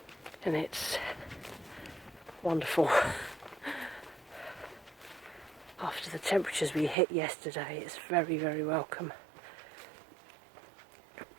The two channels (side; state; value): left; drops out; at 7.0 s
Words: and it's wonderful. After the temperatures we hit yesterday, it's very, very welcome.